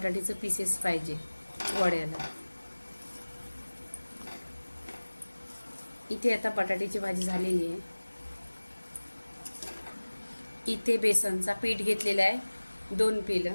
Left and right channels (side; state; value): both; inverted; correlation -1.00